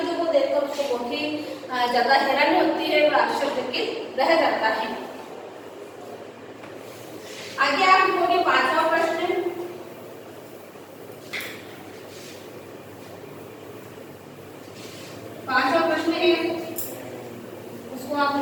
को देखकर उसको बहुत ही ज्यादा हैरानी होती है और आश्चर्यचकित रह जाता है। आगे आप लिखोगे 5वां प्रश्न। 5वां प्रश्न है, उसको आप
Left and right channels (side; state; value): both; identical; correlation 1.00